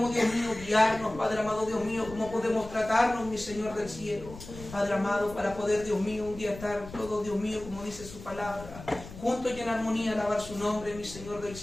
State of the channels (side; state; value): left; noise; rumble, 15 dB below the sound